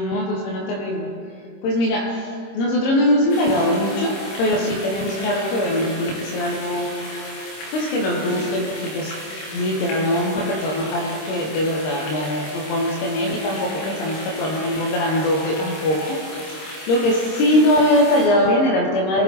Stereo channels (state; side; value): late; right; 26 ms